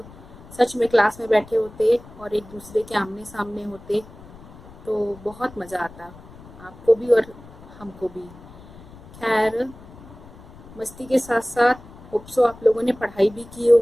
सच में क्लास में बैठे होते और एक दूसरे के आमने सामने होते, तो बहुत मज़ा आता, आपको भी और हमको भी। खैर, मस्ती के साथ साथ होप सो आप लोगों ने पढ़ाई भी की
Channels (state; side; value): noise; left; rumble, 19 dB below the sound